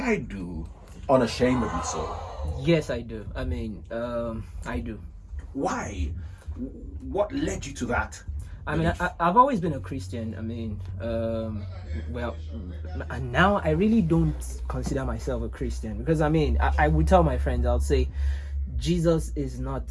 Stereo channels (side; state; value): both; identical; correlation 1.00